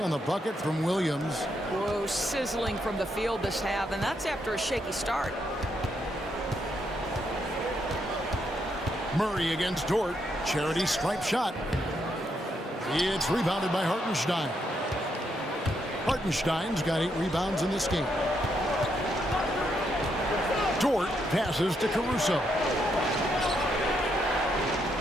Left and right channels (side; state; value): both; normal; correlation 0.78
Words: the bucket from Williams. Whoa, sizzling from the field this half, and that's after a shaky start. Murray against Dort. Charity stripe shot. It's rebounded by Hartenstein. Hartenstein's got 8 rebounds in this game. Dort passes to Caruso.